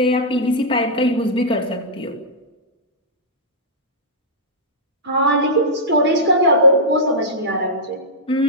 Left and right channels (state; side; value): normal; both; correlation -0.11